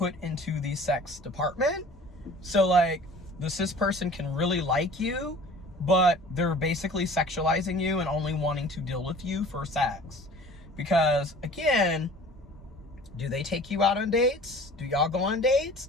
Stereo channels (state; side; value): normal; both; correlation 0.46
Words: into the sex department. So like the cis person can really like you, but they're basically sexualizing you and only wanting to deal with you for sex. Because again, do they take you out on dates? Do y'all go on dates?